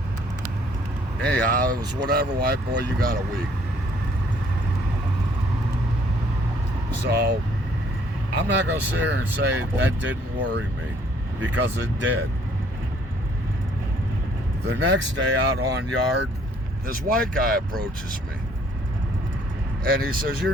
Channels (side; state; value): both; normal; correlation 0.62